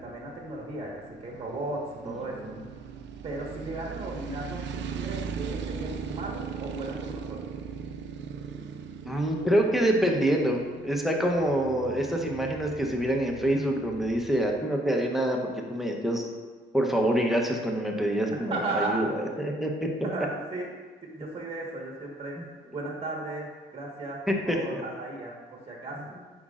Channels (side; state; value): both; normal; correlation 0.67